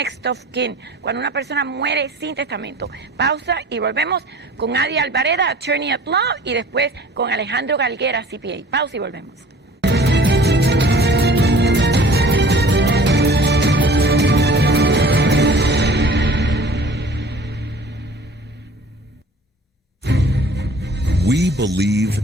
of kin, cuando una persona muere sin testamento. Pausa y volvemos con Adi Alvareda, Attorney at Law, y después con Alejandro Galguera, CPA. Pausa y volvemos. We believe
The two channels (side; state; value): both; normal; correlation 0.47